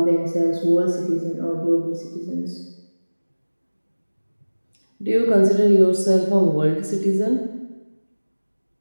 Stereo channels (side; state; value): both; inverted; correlation -1.00